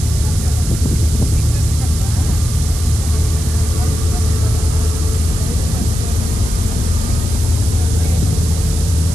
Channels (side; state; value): right; noise; hiss, 9 dB below the sound